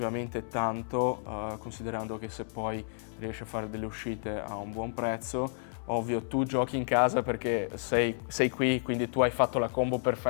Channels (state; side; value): silent; right; digital silence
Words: tanto, considerando che se poi riesci a fare delle uscite a un buon prezzo, ovvio tu giochi in casa perché sei qui, quindi tu hai fatto la combo